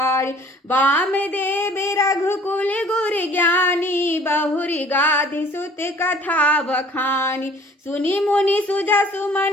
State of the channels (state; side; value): normal; both; correlation 0.52